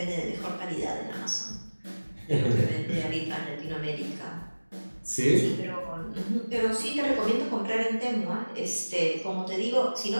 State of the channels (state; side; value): inverted; both; correlation -1.00